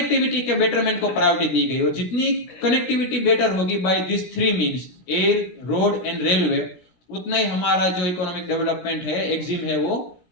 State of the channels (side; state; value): right; late; 16 ms